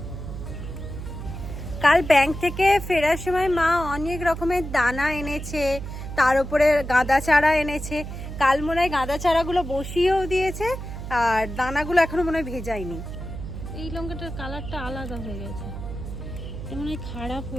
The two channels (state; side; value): noise; right; hum, 8 dB below the sound